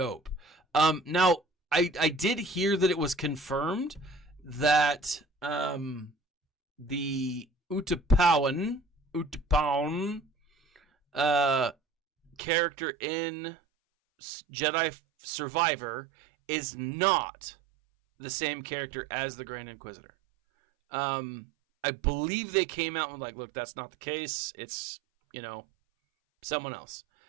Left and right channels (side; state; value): left; drops out; at 12.4 s